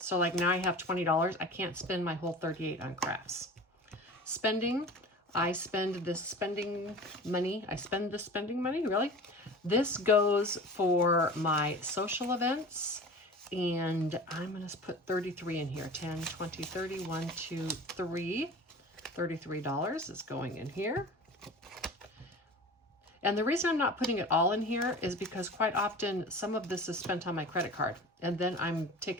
like now I have $20. I can't spend my whole $38 on crafts. Spending, I spend this spending money. Really? This goes for my social events, and I'm going to put 33 in here. 10, 20, 30, 1, 2, 3. $33 is going in here. And the reason I'm not putting it all in here is because quite often some of this is spent on my credit card, and then I'm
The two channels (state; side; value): normal; both; correlation 0.37